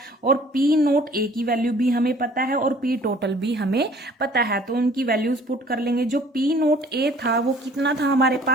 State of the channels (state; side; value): normal; both; correlation 0.53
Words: और पी नोट ए की वैल्यू भी हमें पता है और पी टोटल भी हमें पता है। तो उनकी वैल्यूज पुट कर लेंगे। जो पी नोट ए था वो कितना था हमारे